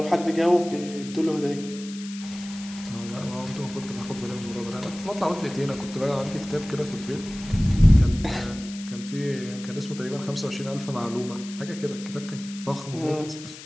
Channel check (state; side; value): noise; left; hiss, 15 dB below the sound